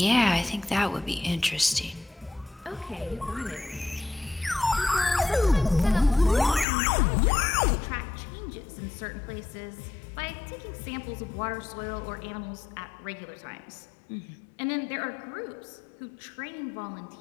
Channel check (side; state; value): right; drops out; at 6.7 s